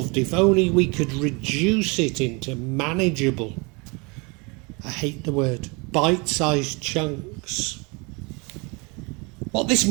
if only we could reduce it into manageable, I hate the word, bite-sized chunks. What this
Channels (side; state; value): left; quieter; 29.4 dB